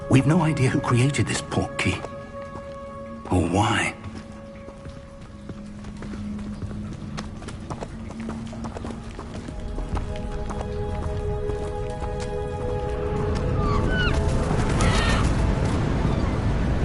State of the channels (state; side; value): identical; both; correlation 1.00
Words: We've no idea who created this port key. Or why.